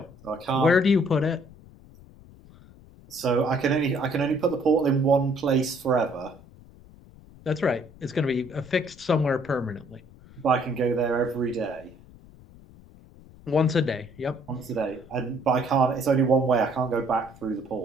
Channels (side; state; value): left; noise; rumble, 23 dB below the sound